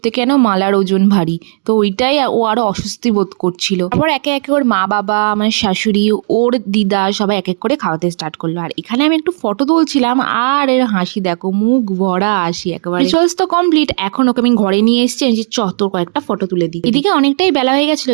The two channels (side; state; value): left; silent; 70 dB below the other